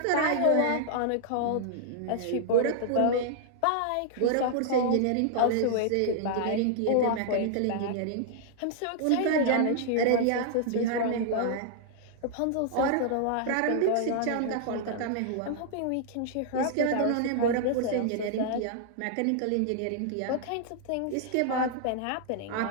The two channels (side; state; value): both; different; correlation -0.01